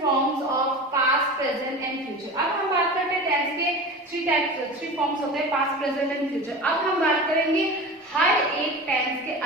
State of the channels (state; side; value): normal; both; correlation 0.32